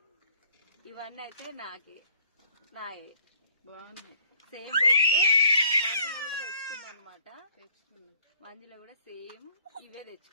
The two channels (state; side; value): inverted; both; correlation -0.61